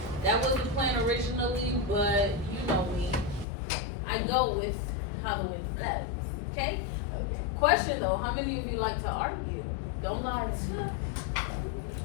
That was the plan originally, but you know me. I go with how the wind blows, okay? Question though, how many of you like to argue? Don't lie.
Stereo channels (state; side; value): drops out; right; at 3.5 s